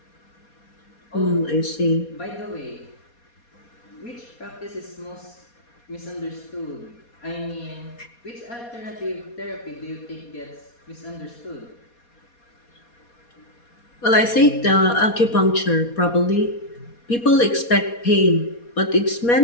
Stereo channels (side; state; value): right; late; 4.2 ms